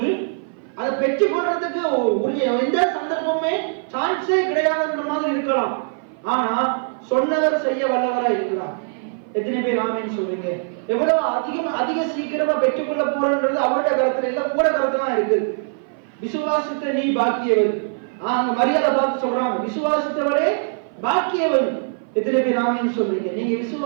அதை பெற்றுக் கொள்றதுக்கு உரிய எந்த சந்தர்ப்பமே சான்ஸே கிடையாதுன்ற மாதிரி இருக்கலாம். ஆனா சொன்னவர் செய்ய வல்லவரா இருக்கிறார். எத்தனை பேர் ஆமேன்னு சொல்றீங்க? எவ்வளவு அதிக சீக்கிரமா பெற்றுக்கொள்ள போறன்றது அவருடைய கருத்துல இல்ல, கூட கருத்துல தான் இருக்குது. விசுவாசித்த நீ பாக்கியவன். அங்க மரியாதை பார்த்து சொல்றாங்க, விசுவாசித்தவரே பாக்கியவன். எத்தனை பேர் ஆமேன்னு சொல்றீங்க? நீங்க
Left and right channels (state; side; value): silent; left; 56 dB below the other